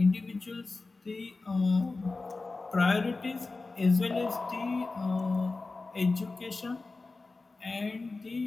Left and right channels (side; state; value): right; quieter; 3.6 dB